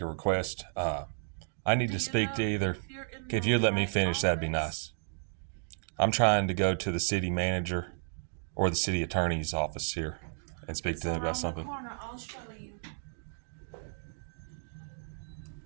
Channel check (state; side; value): silent; left; digital silence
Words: request. I need to speak to either. If you'd let me finish, that'd be nice. I'm trying to go to the city manager or the city attorney's office here and speak to them about something. Corner, I'll show you.